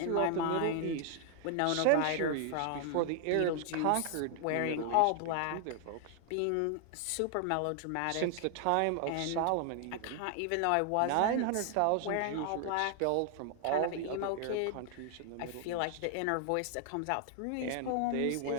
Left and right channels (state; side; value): different; both; correlation 0.00